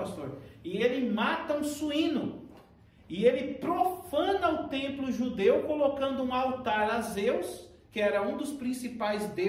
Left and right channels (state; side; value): identical; both; correlation 1.00